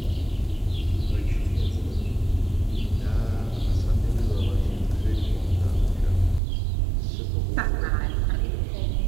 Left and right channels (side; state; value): left; drops out; at 6.4 s